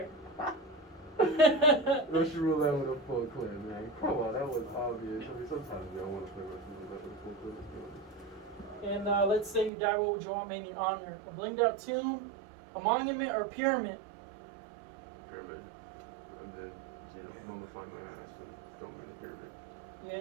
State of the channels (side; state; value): left; drops out; at 9.7 s